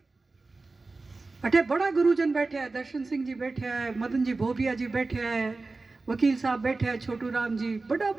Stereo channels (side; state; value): left; quieter; 3.6 dB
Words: अठे बड़ा गुरुजन बैठे हैं, दर्शन सिंह जी बैठे हैं, मदन जी भोबिया जी बैठे हैं, वकील साहब बैठे हैं, छोटू राम जी, बड़ा